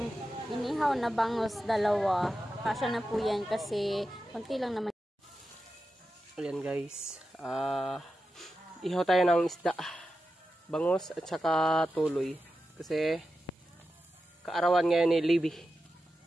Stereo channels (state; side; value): normal; both; correlation 0.91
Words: inihaw na bangus, dalawa. Kasya na po yan kasi konti lang naman. Ayan guys, ihaw tayo ng isda, bangus at saka tuloy. Kasi kaarawan ngayon ni Libby.